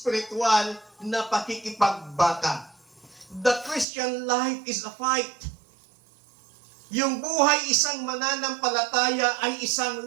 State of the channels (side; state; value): left; drops out; at 3.9 s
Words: na pakikipagbaka. The Christian life is a fight. Yung buhay isang mananampalataya ay